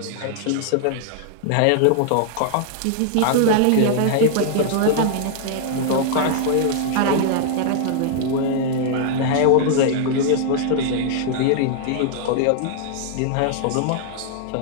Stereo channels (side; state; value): both; different; correlation -0.01